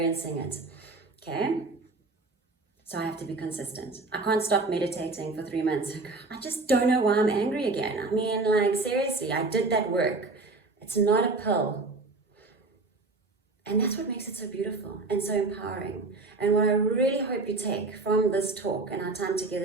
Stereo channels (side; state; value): left; quieter; 3.5 dB